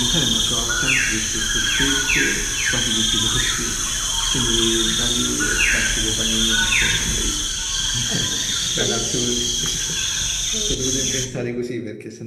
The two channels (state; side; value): identical; both; correlation 1.00